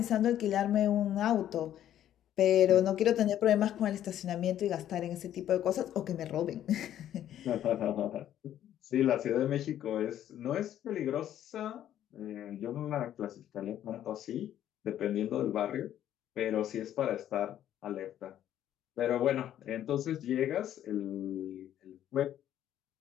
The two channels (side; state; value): right; quieter; 11.3 dB